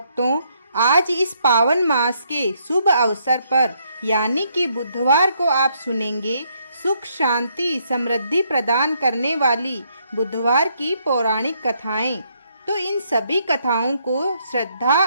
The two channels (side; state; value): both; inverted; correlation -0.72